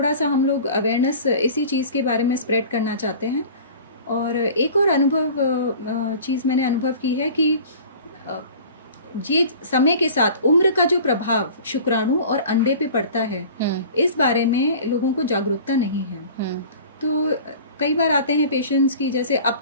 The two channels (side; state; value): both; inverted; correlation -0.42